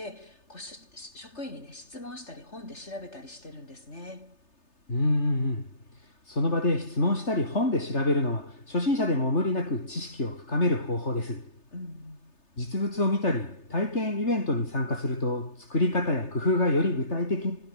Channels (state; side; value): late; right; 3.3 ms